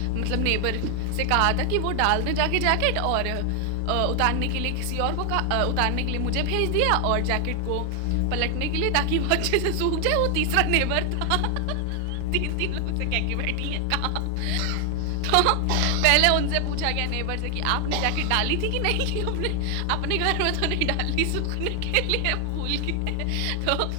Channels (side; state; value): both; different; correlation 0.00